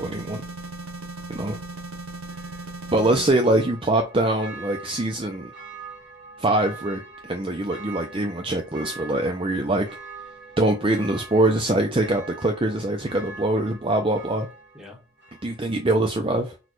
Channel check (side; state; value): both; normal; correlation 0.51